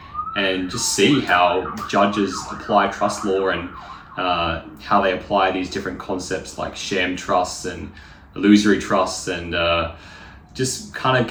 and just see how judges apply trust law and how they apply these different concepts like sham trusts and illusory trusts and just kind of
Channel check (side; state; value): both; identical; correlation 1.00